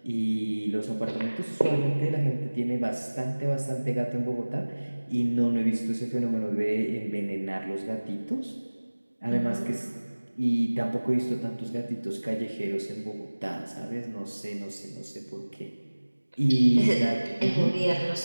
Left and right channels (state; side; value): inverted; both; correlation -1.00